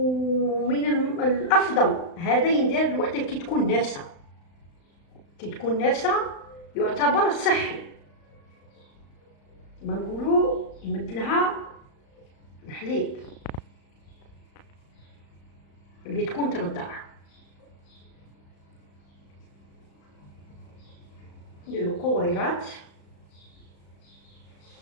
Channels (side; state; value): right; late; 35 ms